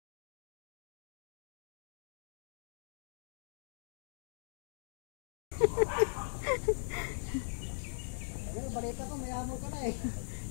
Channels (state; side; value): silent; right; digital silence